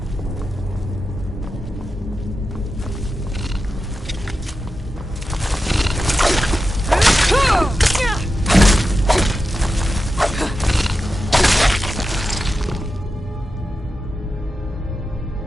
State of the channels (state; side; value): normal; both; correlation 0.90